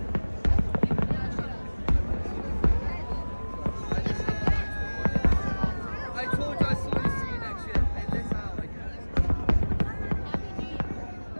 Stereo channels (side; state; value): both; inverted; correlation -1.00